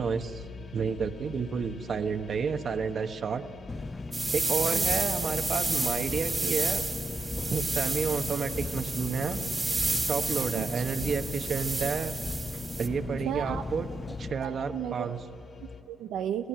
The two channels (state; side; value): quieter; left; 3.4 dB